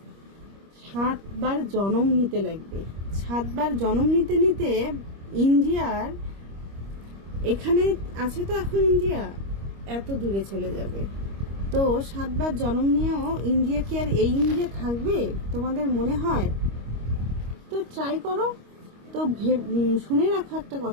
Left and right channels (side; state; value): left; late; 25 ms